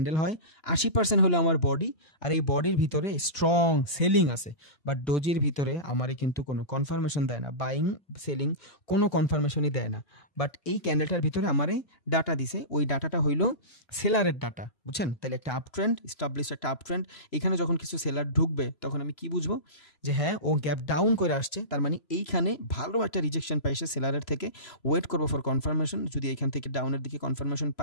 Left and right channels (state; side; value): late; right; 3.0 ms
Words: হয়, 80% হলো আমার বডি, আর এই বডির ভিতরে স্ট্রং সেলিং আছে। বাট ডোজির ভিতরে আমারই কিন্তু কোনো কনফার্মেশন দেয় না, বাইং সেলিং কোনো কনফার্মেশনই দেয় না। বাট এই ক্যান্ডেলটার ভিতরে আমারই ডাটা দিছে, ওই ডাটাটা হইলো সেলারের ডাটা, বুঝছেন? তাহলে একটা আপ ট্রেন্ড, স্টাবলিশ একটা আপ ট্রেন্ড, এখানে যখন কিছু সেলার ঢুকবে তখন আমি কি বুঝবো? যে হ্যাঁ, ও গ্যাপ ডাউন করে আসছে, তার মানে এইখানে ভালো একটা রিজেকশন পাইছে সেলারের থেকে, ওয়েট করবো ফর কনফার্মেশন। যদি এখান থেকে ডাউনের দিকে কনফার্মেশন